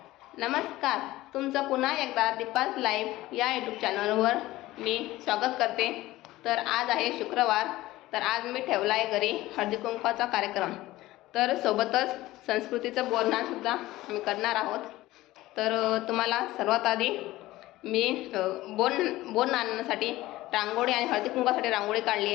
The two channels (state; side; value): quieter; right; 17.2 dB